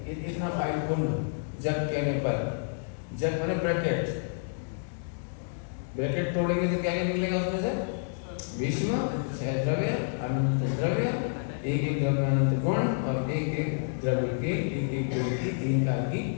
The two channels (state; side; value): silent; right; digital silence